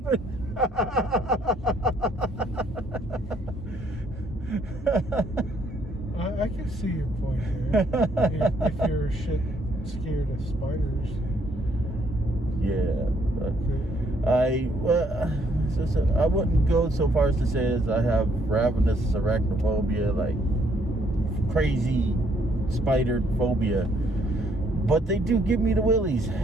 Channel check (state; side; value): normal; both; correlation 0.69